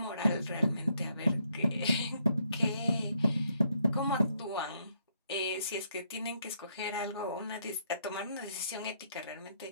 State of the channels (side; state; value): both; inverted; correlation -0.74